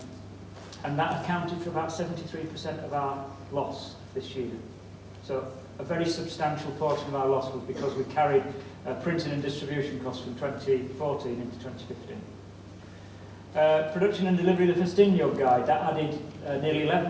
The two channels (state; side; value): identical; both; correlation 1.00